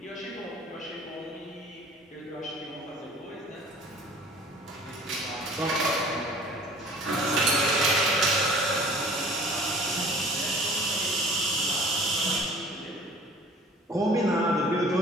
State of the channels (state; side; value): normal; both; correlation 0.48